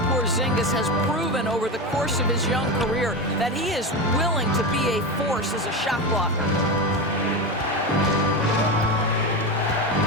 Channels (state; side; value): normal; both; correlation 0.19